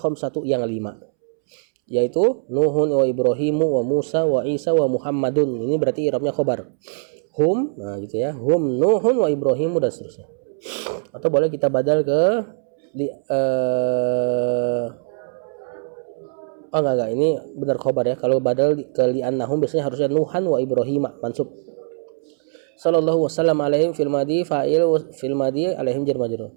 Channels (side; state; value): left; silent; 65 dB below the other